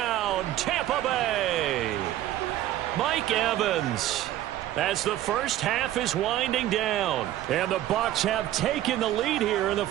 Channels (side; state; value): left; quieter; 13.4 dB